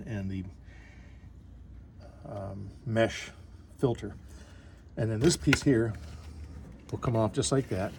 and the mesh filter. And then this piece here will come off just like that.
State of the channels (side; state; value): both; identical; correlation 1.00